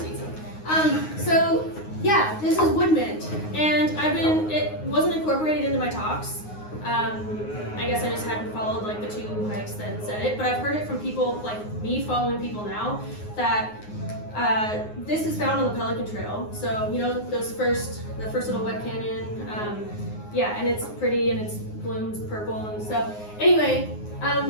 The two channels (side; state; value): right; late; 9.6 ms